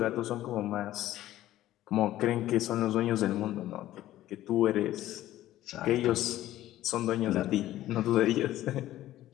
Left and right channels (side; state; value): right; quieter; 14.3 dB